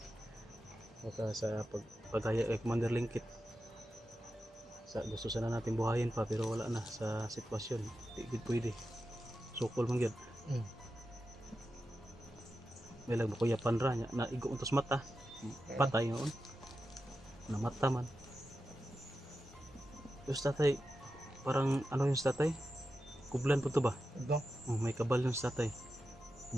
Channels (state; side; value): normal; both; correlation 0.90